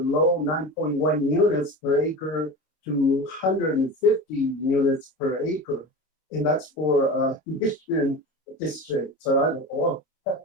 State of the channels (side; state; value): right; late; 27 ms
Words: 9.1 units per acre to 150 units per acre. And that's for Mission District. So I don't know.